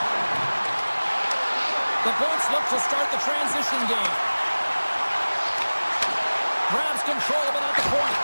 The Bolts look to start the transition game. Grabs control of it at the point.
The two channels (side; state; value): both; inverted; correlation -1.00